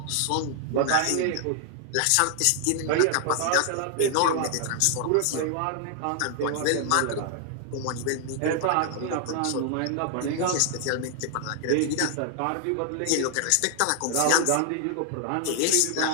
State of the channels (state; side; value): different; both; correlation 0.00